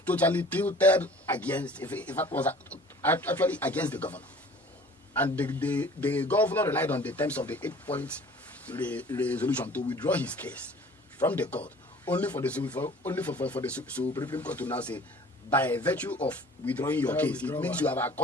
totally tilted against, if it was actually against the governor. And the governor relied on the terms of the 8-point resolution to withdraw his case from the court, only for the Supreme Court to now say, by virtue of withdrawing your case, it means you have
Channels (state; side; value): normal; both; correlation 0.48